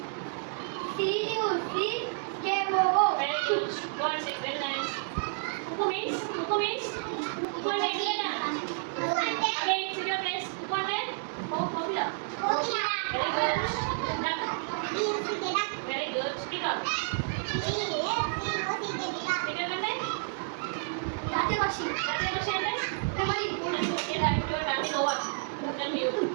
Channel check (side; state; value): left; silent; digital silence